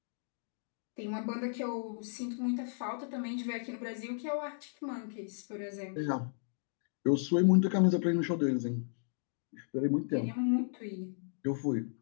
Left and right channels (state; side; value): silent; right; digital silence